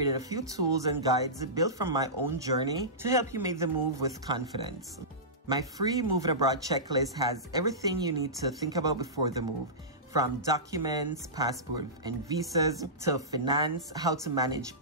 a few tools and guides built from my own journey to help you make the move with confidence. My free moving abroad checklist has everything you need to think about before the move, from documents, passport and visas, to finance, how to manage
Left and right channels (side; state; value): both; normal; correlation -0.19